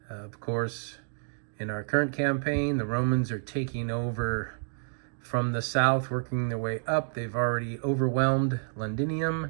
Of course, in our current campaign, the Romans are taking over from the south, working their way up. They've already overwhelmed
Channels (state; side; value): silent; left; digital silence